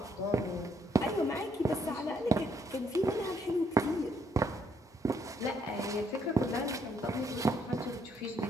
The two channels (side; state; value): both; normal; correlation 0.71